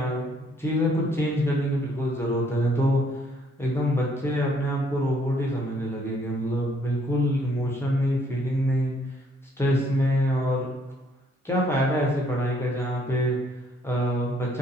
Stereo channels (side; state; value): both; normal; correlation 0.66